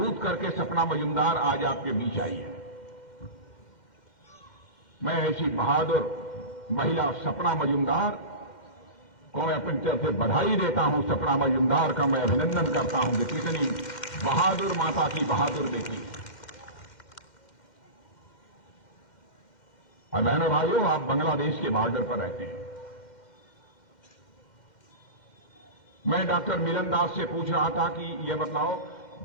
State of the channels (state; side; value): late; right; 2.1 ms